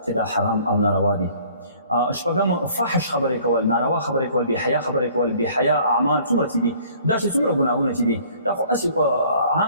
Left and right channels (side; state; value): both; inverted; correlation -0.55